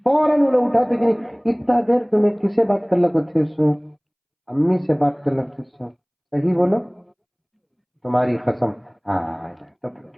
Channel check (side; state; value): both; identical; correlation 1.00